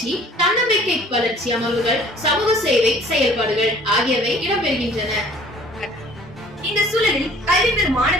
தன்னம்பிக்கை வளர்ச்சி அமர்வுகள், சமூக சேவை செயல்பாடுகள் ஆகியவை இடம்பெறுகின்றன. இந்த சூழலில் கல்வி பெறும்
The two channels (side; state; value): both; normal; correlation 0.53